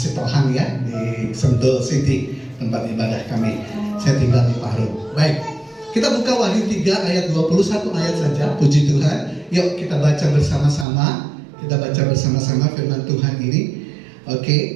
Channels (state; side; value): drops out; left; at 10.9 s